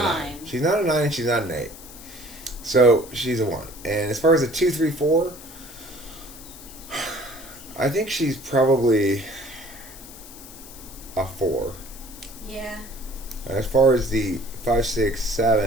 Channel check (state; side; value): noise; left; hiss, 17 dB below the sound